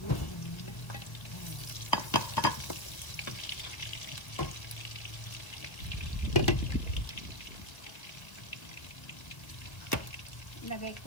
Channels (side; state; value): right; late; 1.4 ms